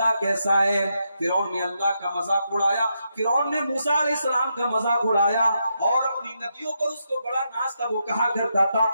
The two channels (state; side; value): inverted; both; correlation -0.82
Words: کیسا ہے۔ فرعون نے اللہ کا مذاق اڑایا، فرعون نے موسیٰ علیہ السلام کا مذاق اڑایا اور اپنی ندیوں پر اس کو بڑا ناز تھا، وہ کہا کرتا تھا